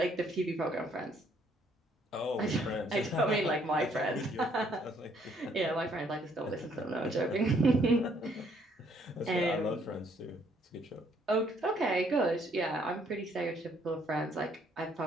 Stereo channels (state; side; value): normal; both; correlation 0.67